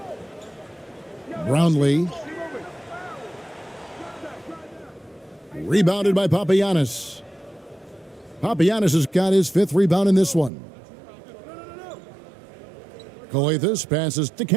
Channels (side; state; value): left; drops out; at 10.5 s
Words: Brownlee. Rebounded by Papagiannis. Papagiannis has got his 5th rebound in this one. Calathes passes to